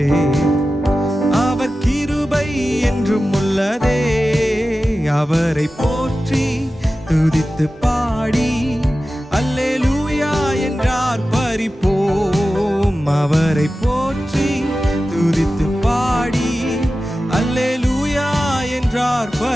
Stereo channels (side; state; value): both; normal; correlation 0.94